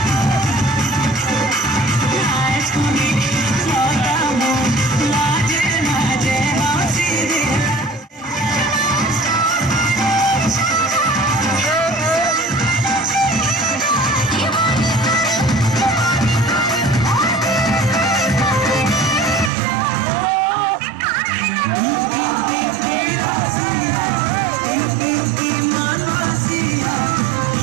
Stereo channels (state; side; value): drops out; left; at 19.5 s